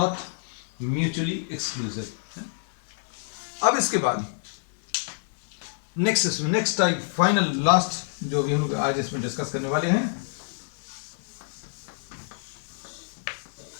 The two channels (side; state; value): right; silent; digital silence